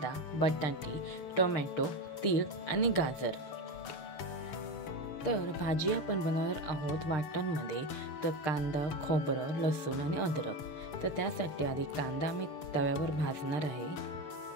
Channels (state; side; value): late; right; 6.6 ms